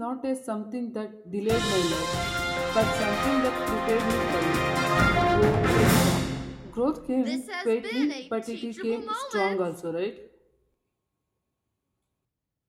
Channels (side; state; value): both; identical; correlation 1.00